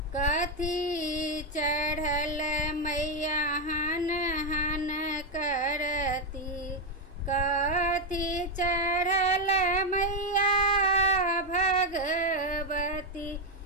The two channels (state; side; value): normal; both; correlation 0.04